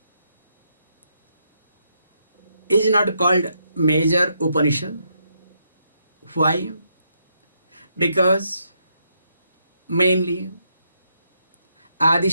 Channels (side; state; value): both; inverted; correlation -0.78